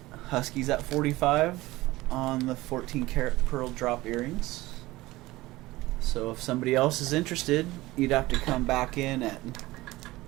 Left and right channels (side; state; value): left; quieter; 18.8 dB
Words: Husky's at 45 on the 14 karat pearl drop earrings. So if somebody else is interested, you'd have to come back in at